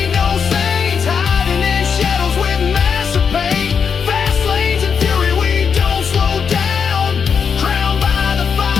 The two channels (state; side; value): quieter; right; 6.5 dB